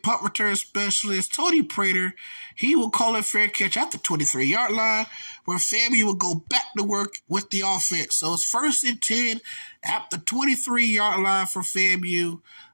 return specialist, Tony Prater. He will call it fair catch at the 23-yard line, where FAMU will go back to work with the offense. So it's 1st and 10 at the 23-yard line for FAMU,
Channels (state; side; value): inverted; both; correlation -1.00